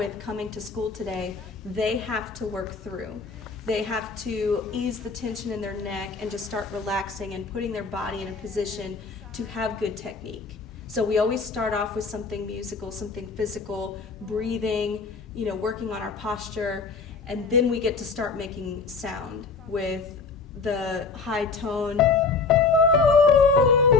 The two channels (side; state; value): right; quieter; 4.5 dB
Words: coming to school today, they have to work through. They have to ease the tension in their neck and just start relaxing and putting their body in a position to have good technique. So we always start off with something musical, something physical, breathing, working on our posture, and then we get to start making sound with the high tone